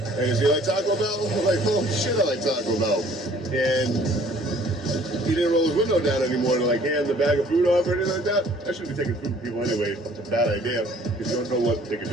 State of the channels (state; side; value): normal; both; correlation 0.56